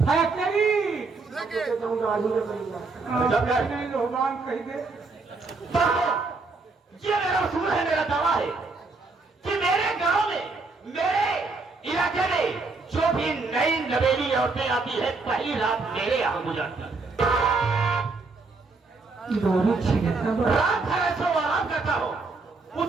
नहीं भगवान कही दे। ये मेरा उसूल है, मेरा दावा है कि मेरे गांव में, मेरे इलाके में जो भी नई नवेली औरतें आती है, पहली रात मेरे यहाँ गुजरती है। रात भर ऐसे आराम करता हूँ,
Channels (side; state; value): left; quieter; 3.9 dB